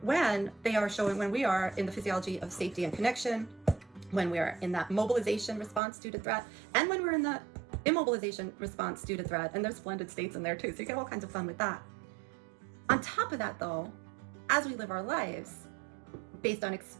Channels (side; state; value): left; drops out; at 5.8 s